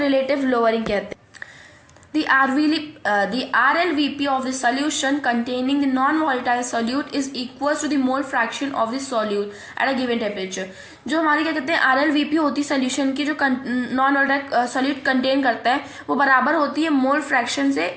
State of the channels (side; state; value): both; identical; correlation 1.00